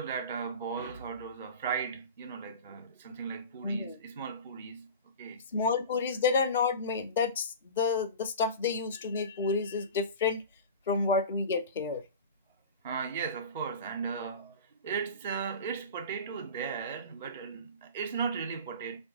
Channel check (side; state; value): both; inverted; correlation -0.33